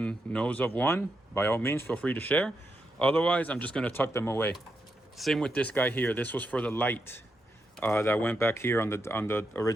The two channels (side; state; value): both; normal; correlation 0.84